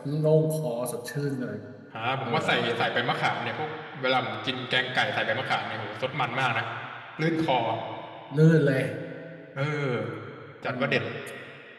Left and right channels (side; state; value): both; identical; correlation 1.00